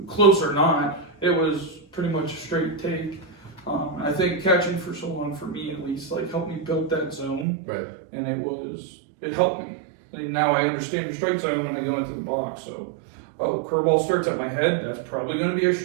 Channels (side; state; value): left; drops out; at 7.5 s